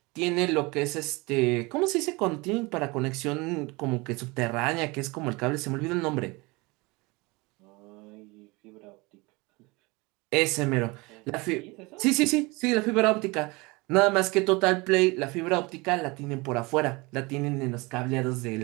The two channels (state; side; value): quieter; left; 25.1 dB